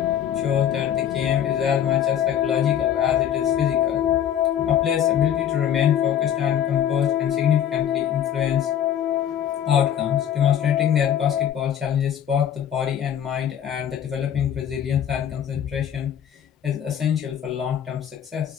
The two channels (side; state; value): right; quieter; 9.7 dB